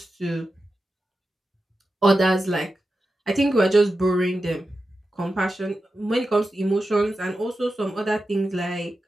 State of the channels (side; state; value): both; normal; correlation 0.91